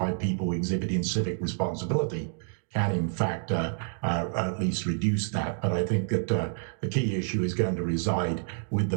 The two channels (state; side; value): silent; left; 59 dB below the other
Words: people exhibiting civic responsibility can in fact at least reduce that. But I think that the key issue is going to reside with the